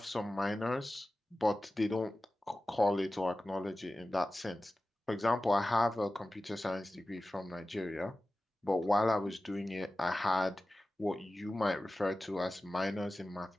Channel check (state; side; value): normal; both; correlation 0.95